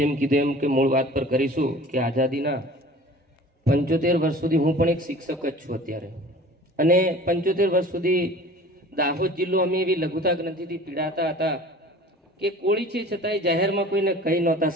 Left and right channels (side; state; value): both; normal; correlation 0.44